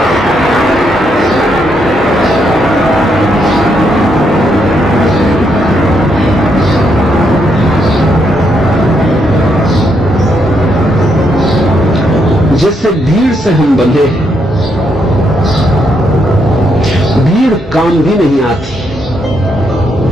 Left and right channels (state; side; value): normal; both; correlation 0.77